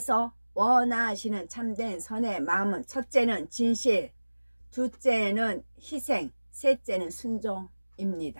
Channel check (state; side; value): inverted; both; correlation -1.00